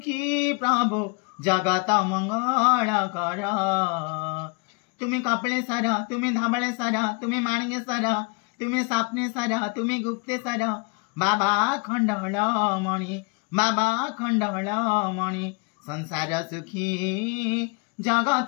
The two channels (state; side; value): quieter; right; 30.9 dB